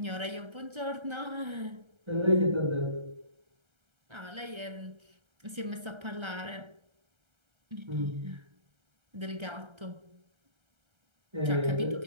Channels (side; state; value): left; late; 1.3 ms